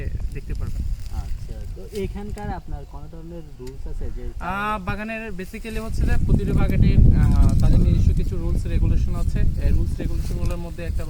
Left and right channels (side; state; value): both; identical; correlation 1.00